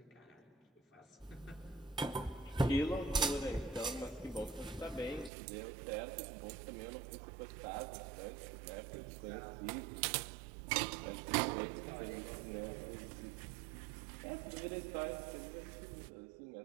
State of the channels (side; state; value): left; drops out; at 5.3 s